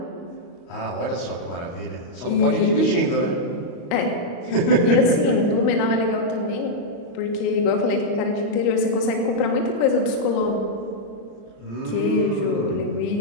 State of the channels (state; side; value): late; right; 35 ms